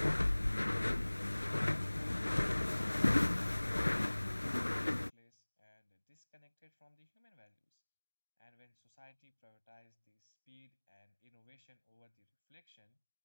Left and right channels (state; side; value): inverted; both; correlation -1.00